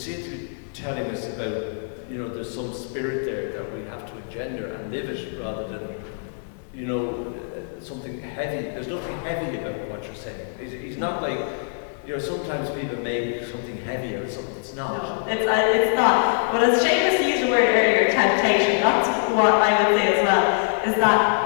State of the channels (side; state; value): right; silent; 63 dB below the other